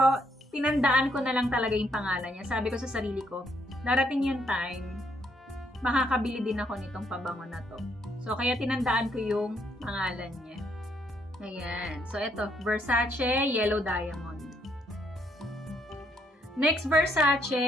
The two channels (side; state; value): both; normal; correlation 0.72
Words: tinandaan ko na lang talaga yung pangalan niya. Sabi ko sa sarili ko, darating yung time, makakabili din ako nitong pabango na to. So, kaya tinandaan ko yung pangalan niya. Ayan. So, ito, Versace Yellow Diamond. Next